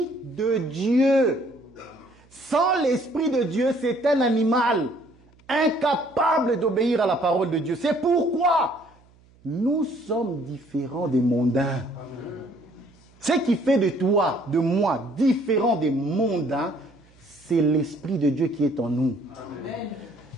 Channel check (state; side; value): noise; right; hum, 29 dB below the sound